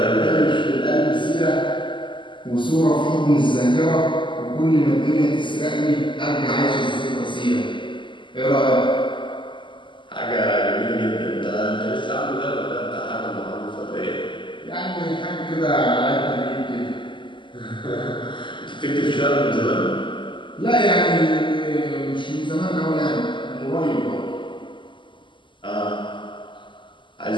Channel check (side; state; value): right; late; 0.24 ms